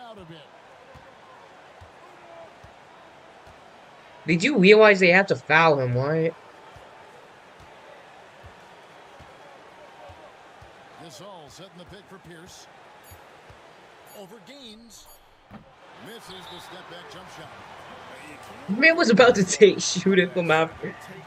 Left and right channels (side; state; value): both; identical; correlation 1.00